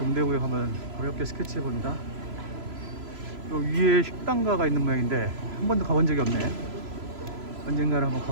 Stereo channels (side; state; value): left; late; 3.0 ms